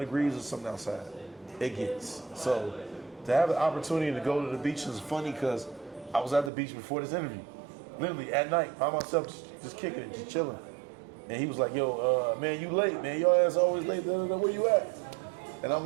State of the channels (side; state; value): left; drops out; at 6.5 s